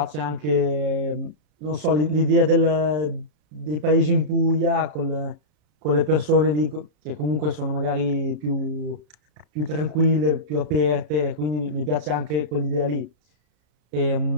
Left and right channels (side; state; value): left; late; 33 ms